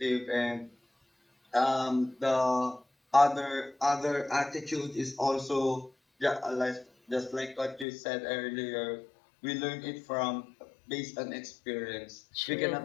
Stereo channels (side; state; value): right; drops out; at 7.9 s